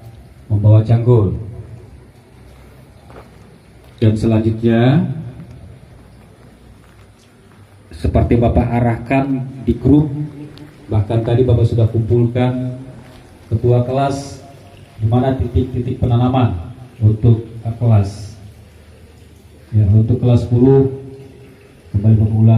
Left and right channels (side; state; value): both; identical; correlation 1.00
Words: membawa cangkul. Dan selanjutnya, seperti Bapak arahkan di grup, bahkan tadi Bapak sudah kumpulkan ketua kelas di mana titik-titik penanaman untuk kelas. Ya, untuk kelas 10 kembali Bapak